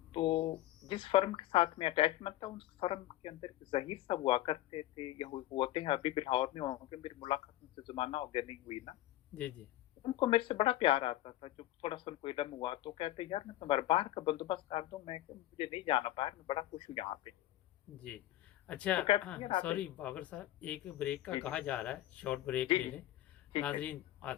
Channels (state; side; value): quieter; right; 15.0 dB